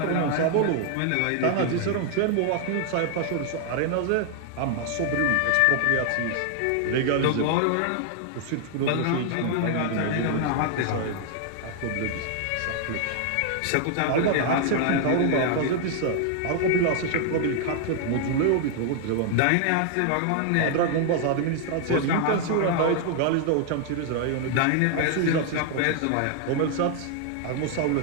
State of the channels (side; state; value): both; different; correlation 0.00